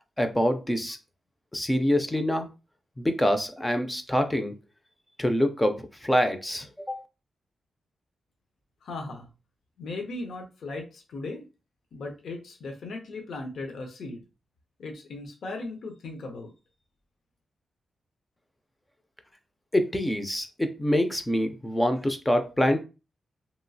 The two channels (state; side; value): normal; both; correlation 0.93